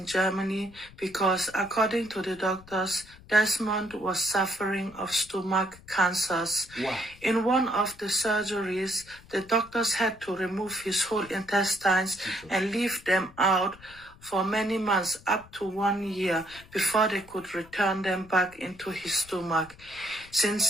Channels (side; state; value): left; noise; rumble, 23 dB below the sound